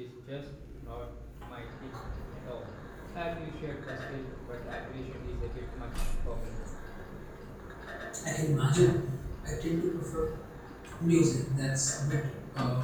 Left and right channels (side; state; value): both; identical; correlation 1.00